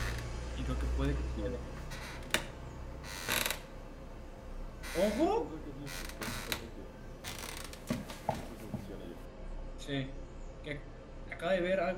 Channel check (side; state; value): both; identical; correlation 1.00